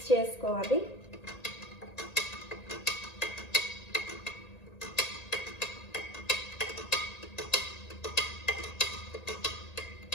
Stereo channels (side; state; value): right; late; 1.8 ms